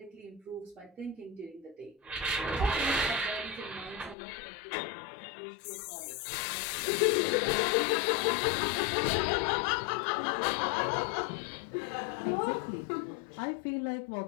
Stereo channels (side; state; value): right; drops out; at 4.2 s